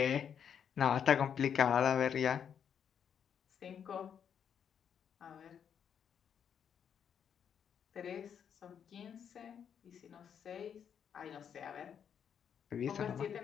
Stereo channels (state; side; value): quieter; right; 8.0 dB